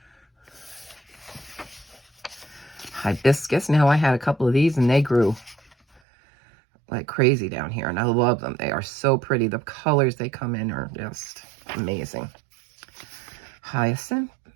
Hibiscus. Now I had a couple of these and they grew like crazy down here, and I love them. They are so pretty. The colors they come in are just amazing. Hyacinth.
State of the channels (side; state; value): left; drops out; at 6.0 s